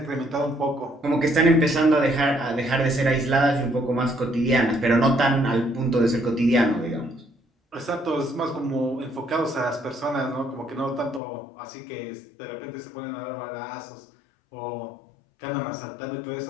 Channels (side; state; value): right; drops out; at 11.2 s